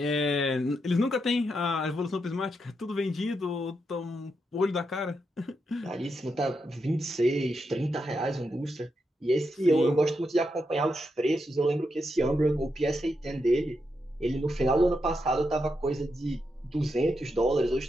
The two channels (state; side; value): normal; both; correlation 0.84